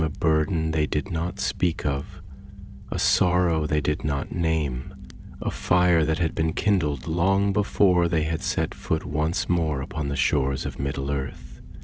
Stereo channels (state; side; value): identical; both; correlation 1.00